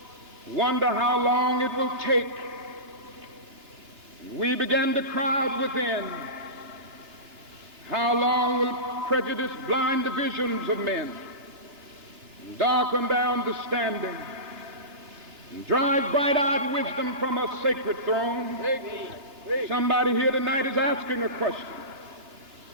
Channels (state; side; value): late; left; 2.9 ms